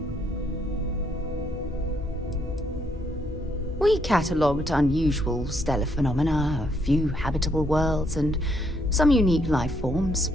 We catalogued unusual stellar phenomena, a few habitable worlds, and some unique life forms,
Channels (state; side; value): normal; both; correlation 0.73